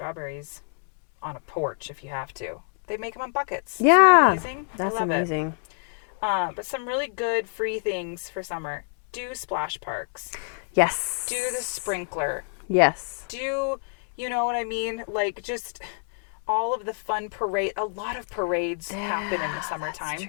on a porch if you have to. They make them in buckets. Yeah. Isn't that amazing? That's I love amazing. it. But some really good free things for summer. Do splash parks. Yes. Do the sprinkler. Yes. Do, you know what I mean? Like just all of the fun parade. A lot of parades happen in the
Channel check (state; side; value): silent; right; 60 dB below the other